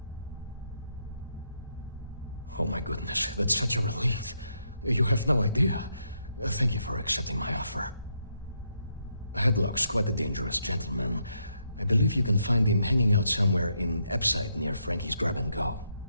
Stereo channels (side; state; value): both; inverted; correlation -0.78